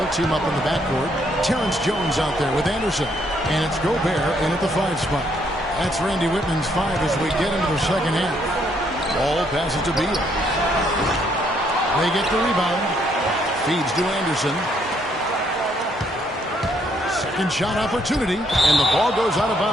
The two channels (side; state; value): both; normal; correlation 0.70